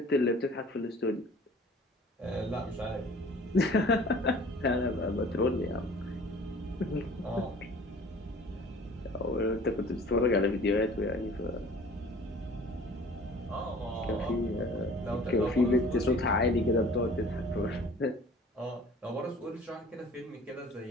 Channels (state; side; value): normal; both; correlation 0.48